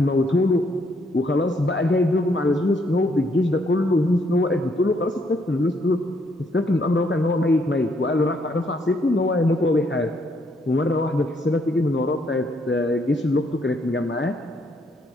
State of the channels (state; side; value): normal; both; correlation 0.71